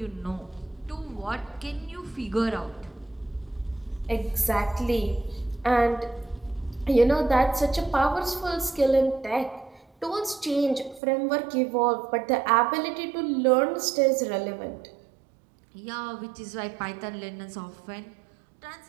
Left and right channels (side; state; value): left; drops out; at 11.0 s